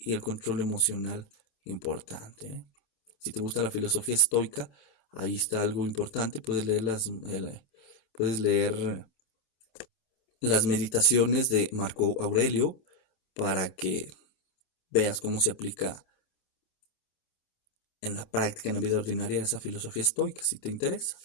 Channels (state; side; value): late; right; 27 ms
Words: el control emocional importante, ¿eh? Si te gusta la filosofía estoica, ahí está algo importante. Puedes leer las meditaciones de Marco Aurelio para que veas cómo se aplica en la práctica, en la vida ordinaria, esa filosofía estoica, si te interesa.